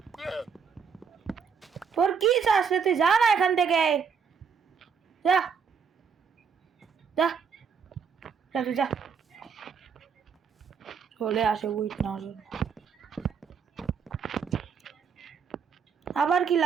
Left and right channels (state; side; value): quieter; left; 6.3 dB